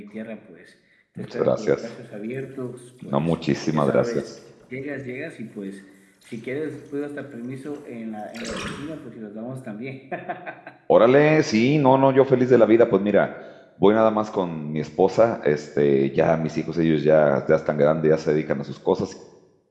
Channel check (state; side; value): identical; both; correlation 1.00